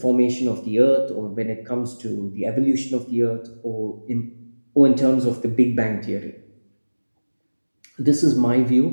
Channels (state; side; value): inverted; both; correlation -1.00